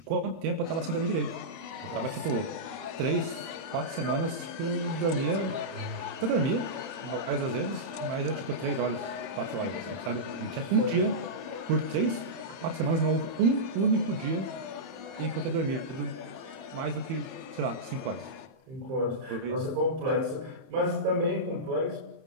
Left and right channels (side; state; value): left; late; 30 ms